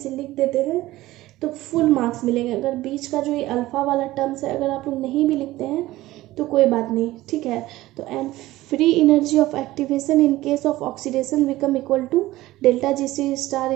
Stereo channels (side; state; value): left; quieter; 17.1 dB